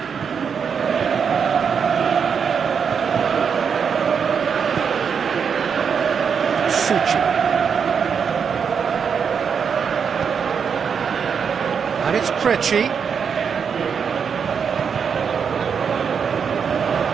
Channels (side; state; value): left; quieter; 6.7 dB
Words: Suchi. And it's Krejci.